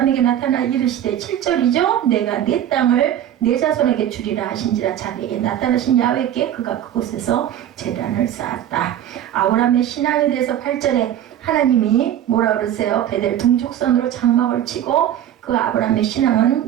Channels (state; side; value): quieter; left; 11.0 dB